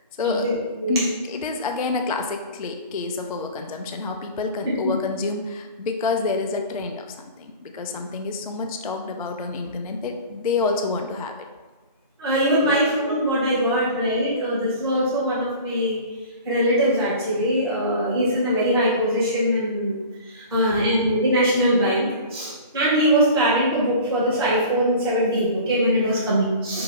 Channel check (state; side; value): inverted; both; correlation -0.39